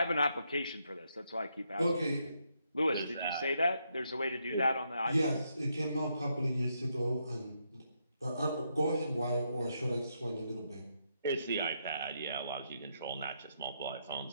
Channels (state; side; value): inverted; both; correlation -0.79